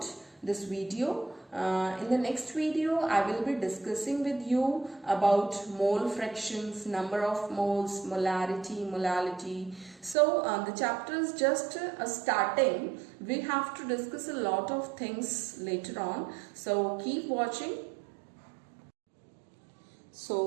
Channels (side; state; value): left; drops out; at 10.2 s